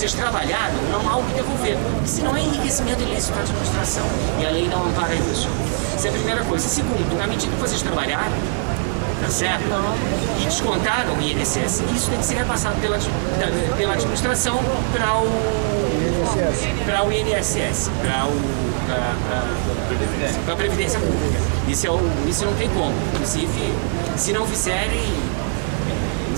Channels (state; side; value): silent; left; 64 dB below the other